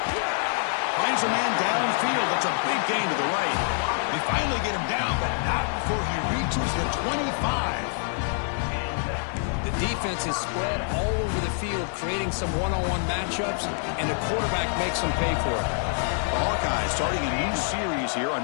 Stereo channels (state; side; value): silent; right; 61 dB below the other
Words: Finds a man downfield. That's a big gain to the right. They finally get him down, but not before he reaches the 25. The defense is spread all over the field, creating some one-on-one matchups, and the quarterback makes them pay for it. The Hawkeyes starting a new series here